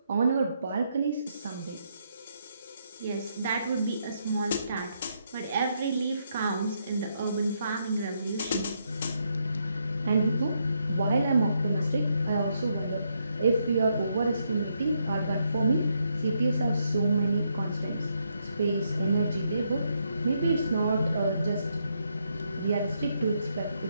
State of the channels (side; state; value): both; inverted; correlation -0.77